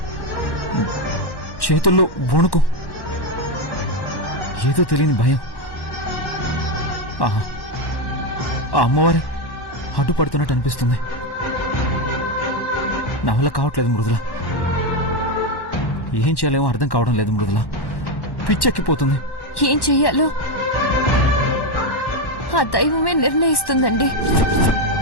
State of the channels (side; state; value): right; late; 1.1 ms